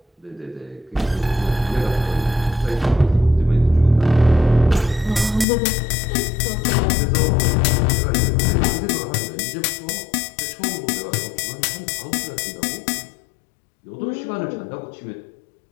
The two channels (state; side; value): drops out; right; at 5.5 s